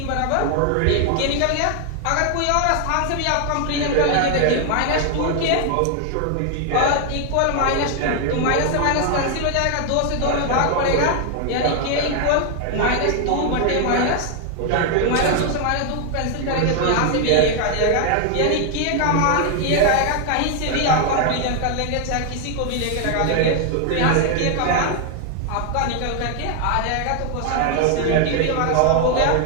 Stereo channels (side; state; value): both; different; correlation 0.00